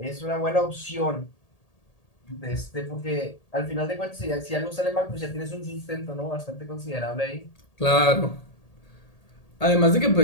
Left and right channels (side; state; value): right; late; 1.8 ms